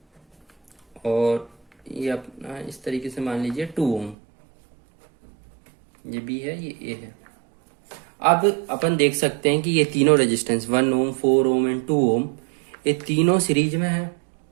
और ये अपना इस तरीके से मान लीजिए 2 ओम। ये बी है, ये ए है। अब अपन देख सकते हैं कि ये तीनों रेजिस्टेंस 1 ओम, 4 ओम एंड 2 ओम ये तीनों सीरीज में है।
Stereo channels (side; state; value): left; drops out; at 4.2 s